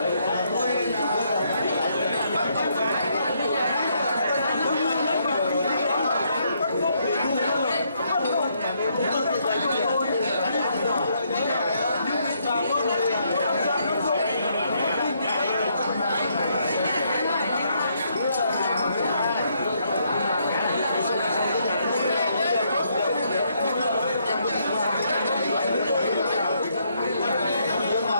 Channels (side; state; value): both; inverted; correlation -0.73